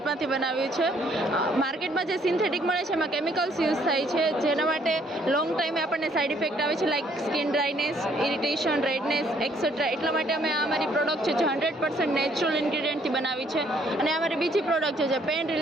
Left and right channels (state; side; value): normal; both; correlation 0.65